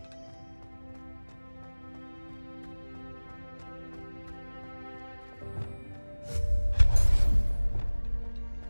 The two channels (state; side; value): inverted; both; correlation -1.00